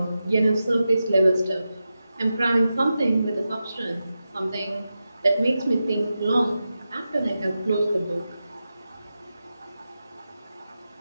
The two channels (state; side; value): inverted; both; correlation -0.91